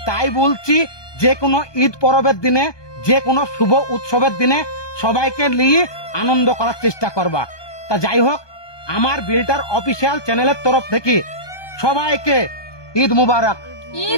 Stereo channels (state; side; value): late; right; 1.2 ms